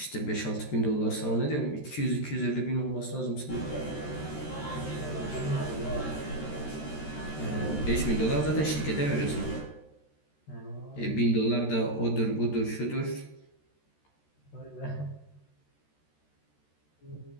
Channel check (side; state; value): right; late; 13 ms